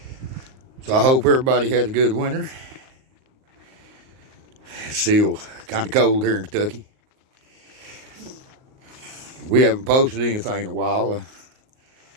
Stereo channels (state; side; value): late; left; 38 ms